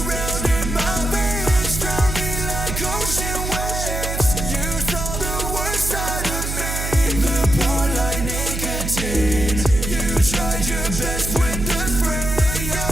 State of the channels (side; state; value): right; noise; hum, 4 dB below the sound